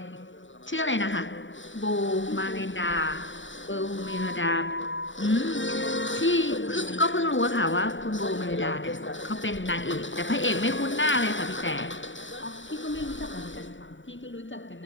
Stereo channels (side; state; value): right; late; 0.55 ms